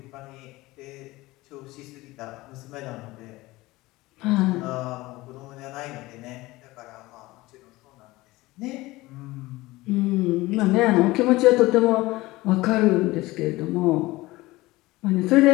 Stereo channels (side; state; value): right; quieter; 19.7 dB